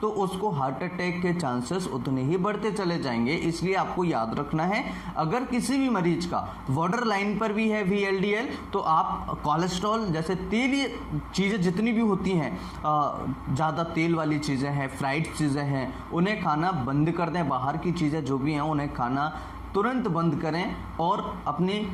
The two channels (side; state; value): both; identical; correlation 1.00